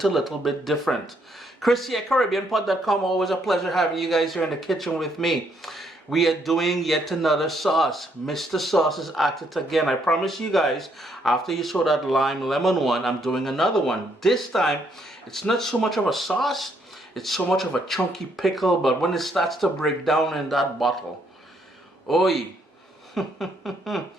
a little bit different. Chris here, CaribbeanPod.com. Always a pleasure having you guys here in the kitchen with me. We are doing yet another sauce. Mr. Sauce is at it again. I promise you guys, after you saw that lime lemon one, I'm doing another one. This time, it's not so much of a sauce. It's so much of a chunky pickle, but when it starts to break down in that bottle, oi,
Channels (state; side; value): normal; both; correlation 0.72